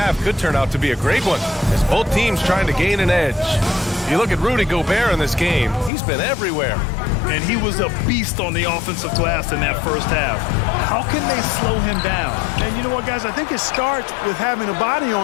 could turn out to be a great one, as both teams trying to gain an edge. If you look at Rudy Gobert in this game, he's been everywhere. And he was a beast on the offensive glass in that first half. How can they slow him down? And you know what, guys? I think it starts with having a body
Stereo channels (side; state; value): right; drops out; at 5.9 s